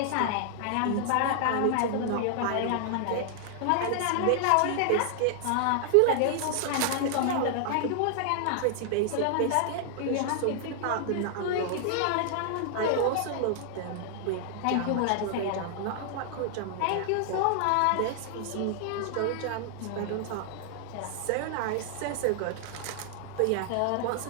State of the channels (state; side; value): different; both; correlation 0.00